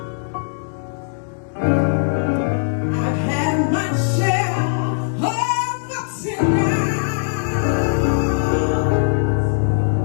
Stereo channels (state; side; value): silent; right; digital silence